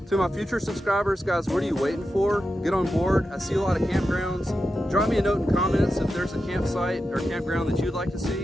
To my future subscribers, guys, what are you waiting for? Get on board. I see a lot of campgrounds. Drop me a note in comments if there's a campsite or campground that you'd like to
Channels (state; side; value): normal; both; correlation 0.90